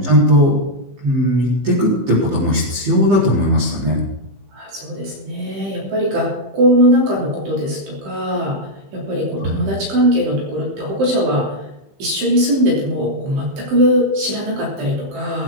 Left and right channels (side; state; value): left; late; 15 ms